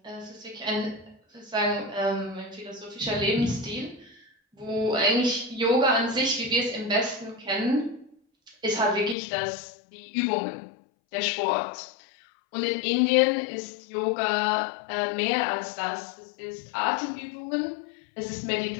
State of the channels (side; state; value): right; drops out; at 9.2 s